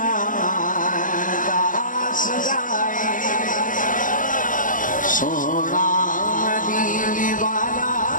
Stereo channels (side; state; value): right; late; 0.38 ms